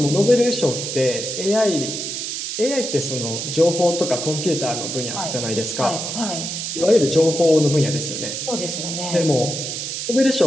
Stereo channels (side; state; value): right; noise; hiss, 4 dB below the sound